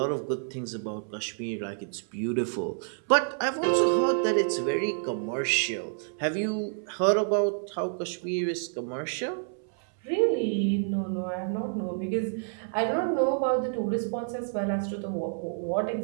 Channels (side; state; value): left; silent; 59 dB below the other